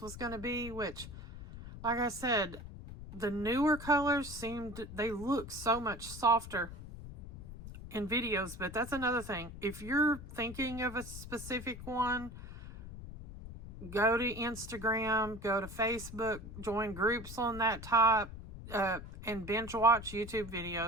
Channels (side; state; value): left; noise; rumble, 12 dB below the sound